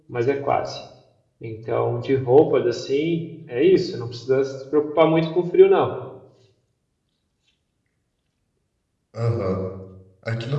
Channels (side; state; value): both; identical; correlation 1.00